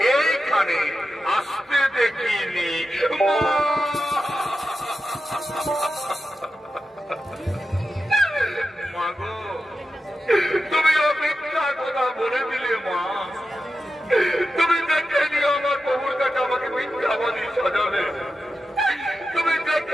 এইখানে আসতে দেখিনি। মা গো, তুমি মিথ্যা কথা বলে দিলে মা। তুমি দেখে নিয়ে আমার প্রভুর কাছে আমাকে মিথ্যাবাদী সাজালে। তুমি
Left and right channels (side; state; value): both; normal; correlation 0.90